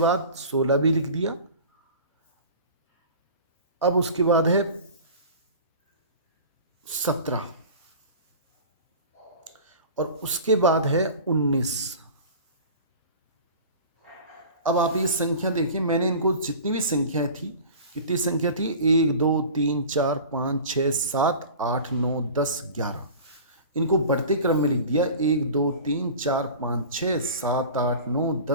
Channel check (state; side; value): inverted; both; correlation -0.38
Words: 16 भी लिख दिया। अब उसके बाद है 17 और उसके बाद है 19। अब आप ये संख्या देखिए, मैंने इनको जितनी भी संख्याएं थी, कितनी संख्या थी? 1, 2, 3, 4, 5, 6, 7, 8, 9, 10, 11। इनको बढ़ते क्रम में लिख दिया। 1, 2, 3, 4, 5, 6, 7, 8, 9,